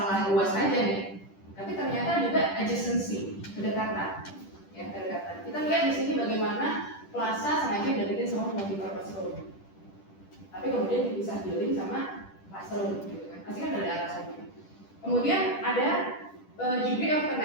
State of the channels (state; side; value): late; right; 10 ms